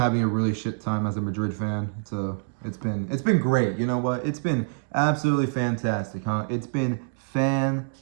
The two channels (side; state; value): left; silent; digital silence